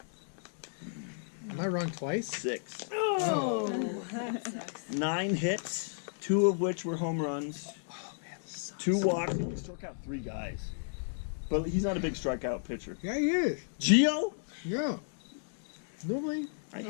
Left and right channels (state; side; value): silent; right; digital silence